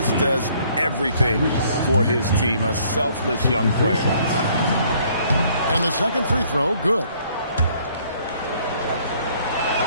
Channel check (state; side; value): inverted; both; correlation -0.62